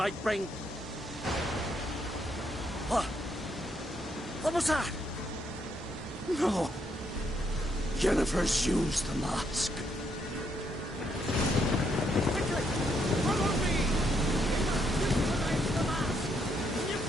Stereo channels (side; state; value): both; normal; correlation 0.75